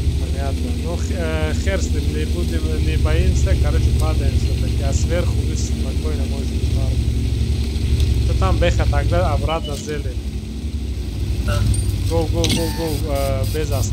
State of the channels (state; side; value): identical; both; correlation 1.00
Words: Понятно. Ну, хер с ним, не боимся, короче, падаем все-таки. А сверху вы спокойно можете падать. Там беха тогда обратно зелень. Да. Go, без